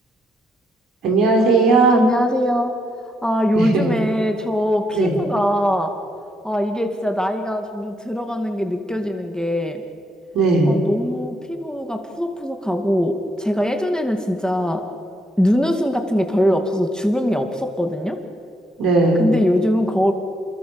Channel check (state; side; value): normal; both; correlation 0.75